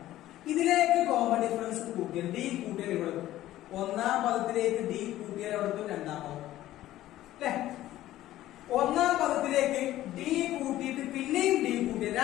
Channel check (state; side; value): quieter; right; 14.4 dB